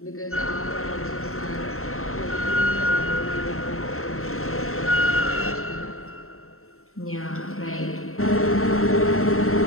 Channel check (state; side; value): late; right; 0.63 ms